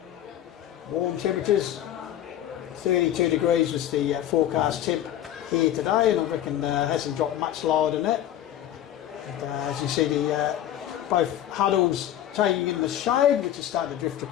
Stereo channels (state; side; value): quieter; right; 11.7 dB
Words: warm temperatures. 32 degrees was the forecast temp here today, and I reckon hasn't dropped much lower than that. And, as you see, both huddles taking in the shade, which is starting to drift